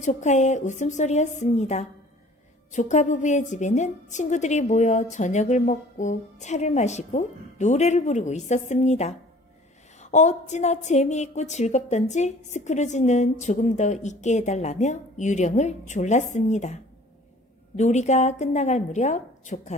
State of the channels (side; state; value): both; normal; correlation 0.49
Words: 조카의 웃음소리였습니다. 조카 부부의 집에는 친구들이 모여 저녁을 먹고 차를 마시고 노래를 부르고 있었습니다. 어찌나 재미있고 즐겁던지 스크루지는 조금 더 있게 해달라며 유령을 졸랐습니다. 놀이가 끝나갈 무렵